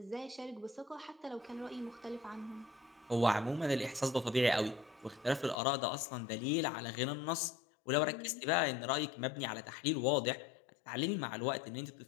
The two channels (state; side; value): drops out; right; at 5.6 s